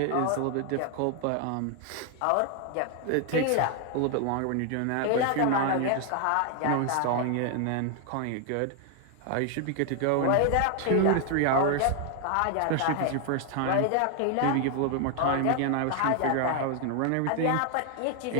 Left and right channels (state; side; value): different; both; correlation 0.00